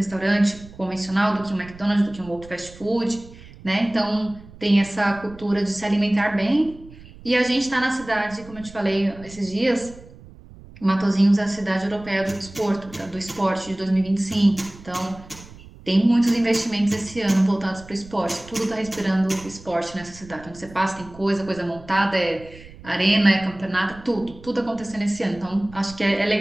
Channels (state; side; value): noise; right; rumble, 20 dB below the sound